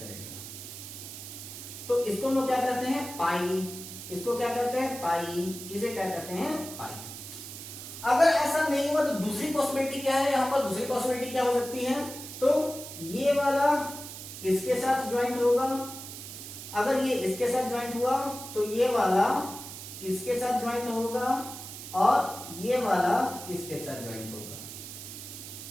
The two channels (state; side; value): noise; right; hiss, 11 dB below the sound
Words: तो इसको हम लोग क्या कहते हैं, पाई। इसको क्या कहते हैं, पाई। इसे क्या कहते हैं, पाई। अगर ऐसा नहीं हुआ तो दूसरी पॉसिबिलिटी क्या है, यहां पर दूसरी पॉसिबिलिटी क्या हो सकती है, तो ये वाला इसके साथ ज्वाइंट होगा, अगर ये इसके साथ ज्वाइंट हुआ तो ये वाला इसके साथ ज्वाइंट होगा और ये वाला इसके साथ ज्वाइंट होगा,